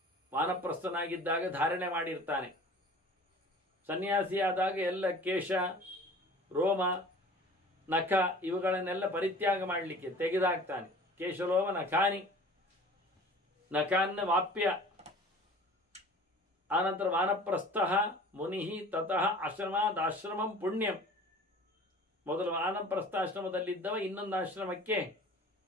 ವಾನಪ್ರಸ್ಥನಾಗಿದ್ದಾಗ ಧಾರಣೆ ಮಾಡಿರ್ತಾನೆ. ಸನ್ಯಾಸಿಯಾದಾಗ ಎಲ್ಲ ಕೇಶ, ರೋಮ, ನಖ ಇವುಗಳನ್ನೆಲ್ಲ ಪರಿತ್ಯಾಗ ಮಾಡಲಿಕ್ಕೆ ತೆಗೆದಾಕ್ತಾನೆ. ಕೇಶಲೋಮ ನಖಾನಿ, ನಕಾನ್ನ ವಾಪ್ಯ. ಆನಂತರ ವಾನಪ್ರಸ್ಥ ಮುನಿ ತತಃ ಆಶ್ರಮಾದಾಶ್ರಮಂ ಪುಣ್ಯಂ. ಮೊದಲು ವಾನಪ್ರಸ್ಥಾಶ್ರಮದಲ್ಲಿದ್ದವ ಇನ್ನೊಂದು ಆಶ್ರಮಕ್ಕೆ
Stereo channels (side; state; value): both; normal; correlation 0.44